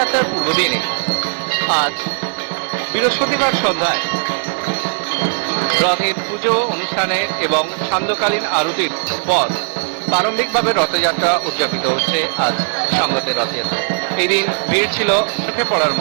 পূর্বদিনে আজ বৃহস্পতিবার সন্ধ্যায় রথের পুজো অনুষ্ঠানের এবং সান্ধ্যকালীন আরতির পর প্রারম্ভিকভাবে রথযাত্রা উদযাপিত হচ্ছে আজ সংগতের রথযাত্রা। এই দিন ভিড় ছিল চোখে পড়ার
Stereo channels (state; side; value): silent; left; 60 dB below the other